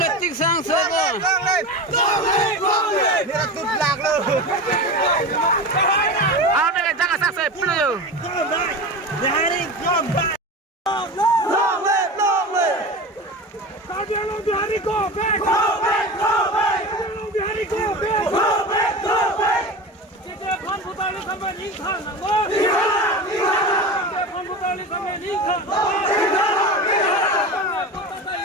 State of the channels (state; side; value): normal; both; correlation 0.27